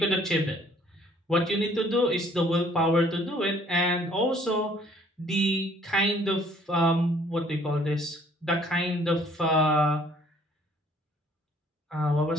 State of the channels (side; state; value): both; normal; correlation 0.59